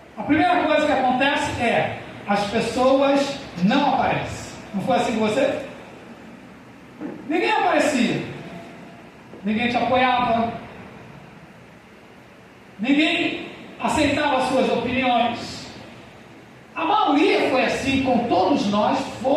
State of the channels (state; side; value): identical; both; correlation 1.00